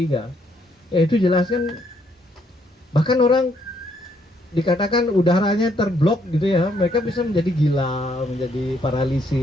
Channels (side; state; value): both; normal; correlation 0.71